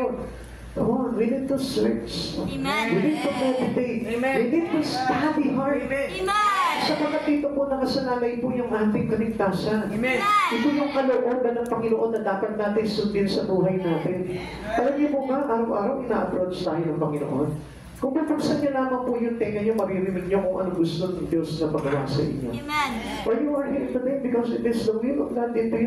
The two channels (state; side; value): identical; both; correlation 1.00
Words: yun. Come on, we need to search. Amen. We need to meditate. Amen. We need to study hard. Amen. Sapagkat dito po nakasanalay po yung ating kaligtasan. Amen. Ito yung kalooban ng Panginoon na dapat natin sundin sa buhay natin. Alam niyo po ba, araw-araw ina-approach tayo ng Panginoon. Kung bubuksan niyo lamang po yung tenga niyo, maririnig niyo kung ano gusto ng Diyos na pagawa sa inyo. Amen. Or you are here today because it is the will of God into